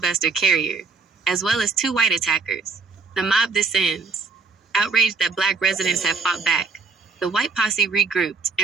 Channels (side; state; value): left; quieter; 4.5 dB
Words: Carrier, as well as two white attackers. The mob descends. Outraged that Black residents had fought back, the white posse regrouped